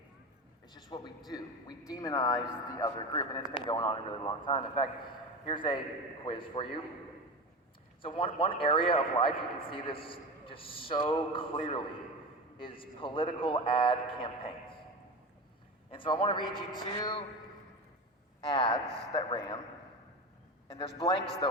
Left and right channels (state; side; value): normal; both; correlation 0.25